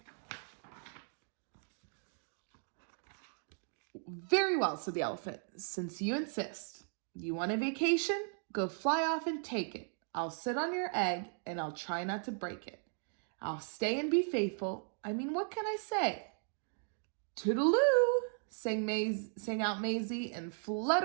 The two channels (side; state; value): left; silent; 53 dB below the other